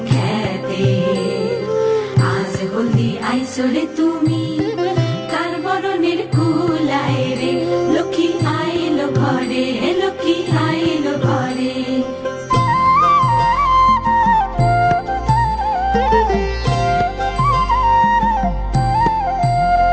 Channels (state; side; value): identical; both; correlation 1.00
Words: খেতে আজ হলদি আইসরে তুমি কার বরণের কুলায় রে লক্ষ্মী আইলো ঘরে লক্ষ্মী আইলো ঘরে